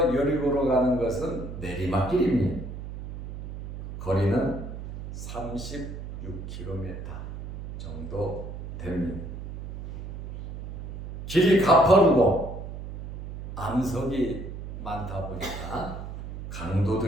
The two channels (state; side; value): noise; right; hum, 9 dB below the sound